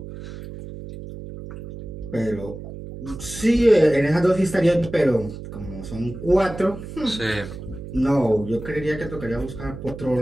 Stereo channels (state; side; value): noise; right; hum, 11 dB below the sound